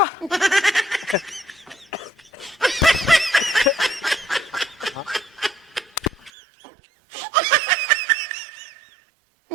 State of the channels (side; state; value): left; drops out; at 6.3 s